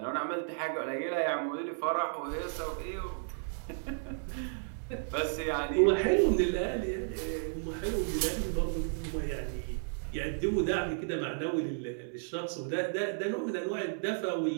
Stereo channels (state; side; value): silent; left; 56 dB below the other